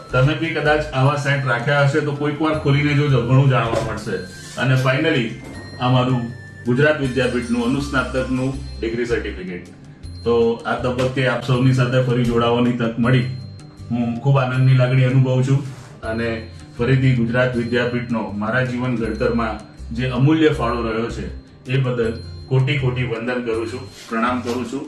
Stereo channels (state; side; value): identical; both; correlation 1.00